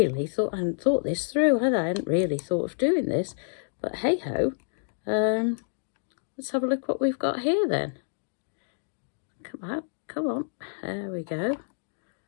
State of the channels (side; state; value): right; silent; digital silence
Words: thought, I hadn't thought this through, had I? I hadn't really thought of doing this, but hey ho. Let's have a look what we've got here then. Come on, there we go.